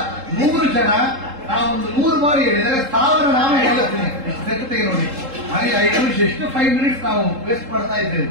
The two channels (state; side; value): late; left; 3.7 ms